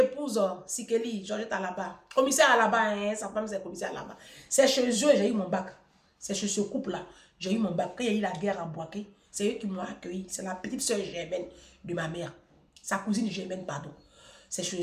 Sikeli. Georgette à là-bas. Commissaire à là-bas, hein? Sa femme c'est commissaire à là-bas. C'est chez eux, j'ai eu mon bac. C'est chez ce couple-là. J'ai eu mon bac. Quand il y a eu la guerre à Boaké, c'est eux qui m'ont accueilli. C'est la petite soeur Germaine de ma mère. Sa cousine Germaine, pardon. C'est chez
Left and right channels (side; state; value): both; identical; correlation 1.00